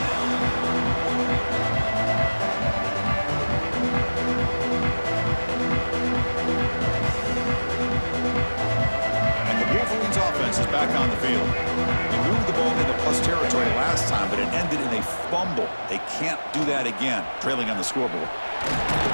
And the Wolverines offense is back on the field. They moved the ball into plus territory last time, but it ended in a fumble. They can't do that again, trailing on the scoreboard.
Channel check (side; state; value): both; inverted; correlation -1.00